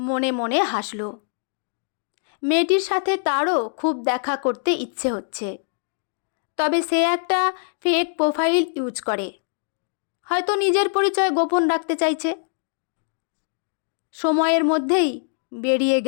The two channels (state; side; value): silent; right; digital silence